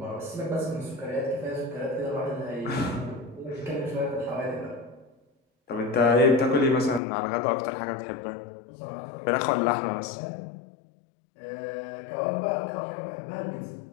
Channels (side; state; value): right; drops out; at 7.0 s